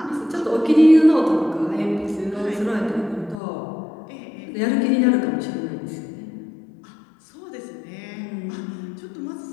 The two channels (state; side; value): drops out; right; at 3.4 s